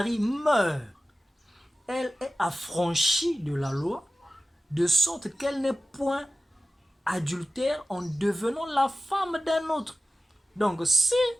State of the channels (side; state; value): both; normal; correlation 0.95